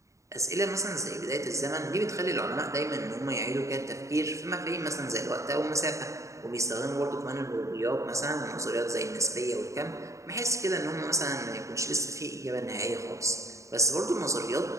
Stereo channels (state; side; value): late; left; 0.15 ms